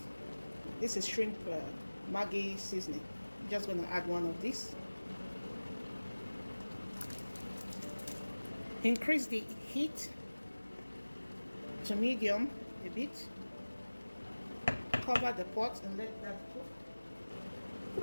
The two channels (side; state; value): both; inverted; correlation -1.00